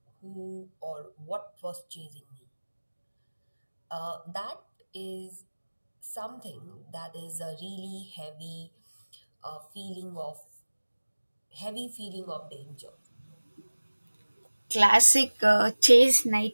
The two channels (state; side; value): inverted; both; correlation -1.00